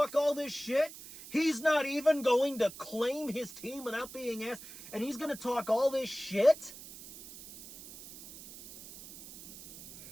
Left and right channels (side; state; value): right; noise; hiss, 15 dB below the sound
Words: all this shit. He's not even going to claim his team without being asked. And he's going to talk all this shit.